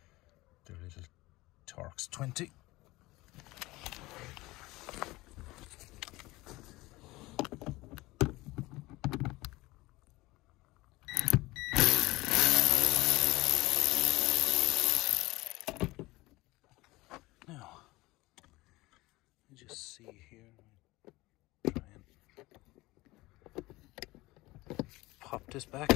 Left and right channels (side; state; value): right; quieter; 20.2 dB